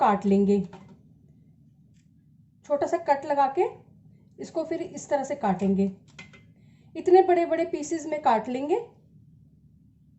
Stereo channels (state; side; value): identical; both; correlation 1.00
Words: लेंगे। छोटा सा कट लगा के इसको फिर इस तरह से काटेंगे। इतने बड़े बड़े पीसेस में काट लेंगे।